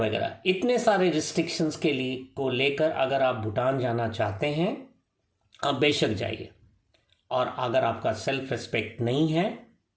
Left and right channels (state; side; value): identical; both; correlation 1.00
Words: इतने सारे रिस्ट्रिक्शंस के लिए को लेकर अगर आप भूटान जाना चाहते हैं, आप बेशक जाइए। और अगर आपका सेल्फ रिस्पेक्ट नहीं है